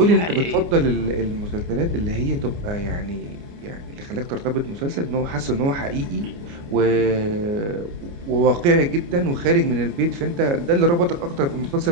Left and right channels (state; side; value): late; left; 29 ms